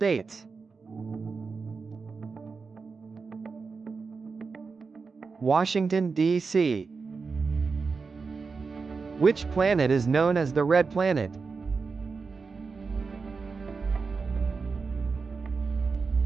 Washington, D.C. Which planet is known as the Red Planet?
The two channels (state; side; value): quieter; left; 4.8 dB